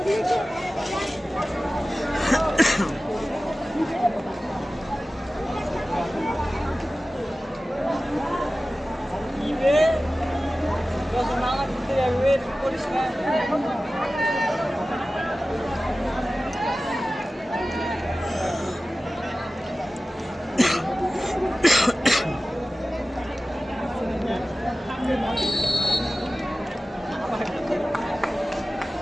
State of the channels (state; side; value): normal; both; correlation 0.96